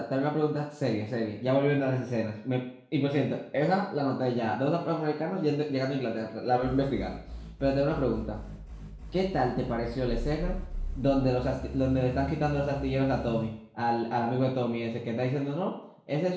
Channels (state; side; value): identical; both; correlation 1.00